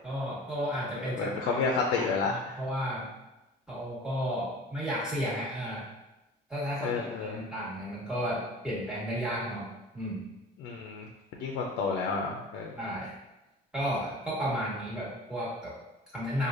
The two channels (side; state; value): both; normal; correlation 0.39